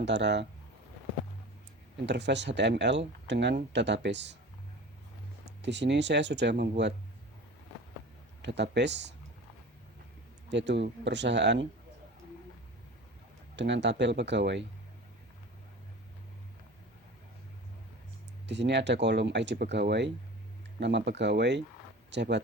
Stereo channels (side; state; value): both; normal; correlation 0.37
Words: interface HTML dengan database. Di sini saya sudah membuat database, yaitu perusahaan dengan tabel pegawai. Di sini ada kolom ID pegawai, nama pegawai,